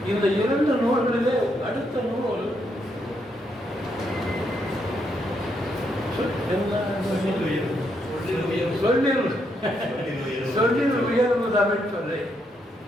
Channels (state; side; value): normal; both; correlation 0.77